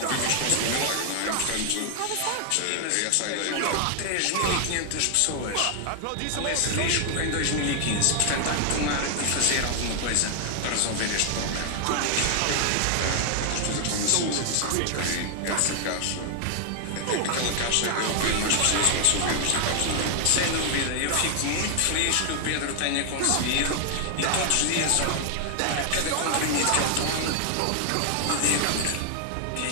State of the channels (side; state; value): both; different; correlation 0.00